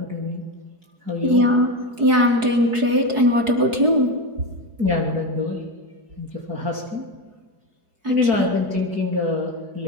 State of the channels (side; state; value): left; late; 4.7 ms